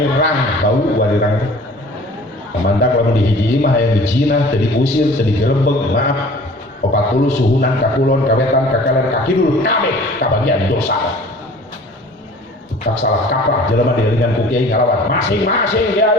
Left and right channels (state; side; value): normal; both; correlation 0.47